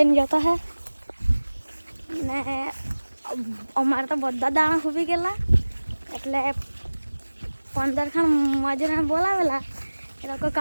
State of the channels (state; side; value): inverted; both; correlation -1.00